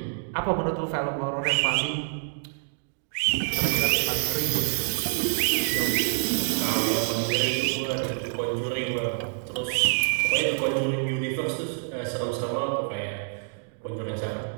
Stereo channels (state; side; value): silent; left; 60 dB below the other